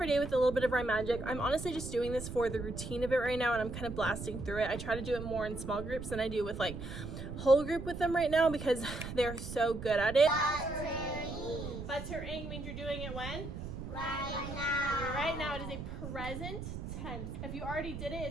day with a little bit of rhyme magic. I'm honestly just doing this for the routine of it right now and I'm kind of blasting through it. I try to do it more in small groups than I do with like whole group with them right now because they're so good at it. Buttering means you're doing it when? Right now. Right now it is a present tense. If you already did it,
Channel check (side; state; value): right; noise; rumble, 8 dB below the sound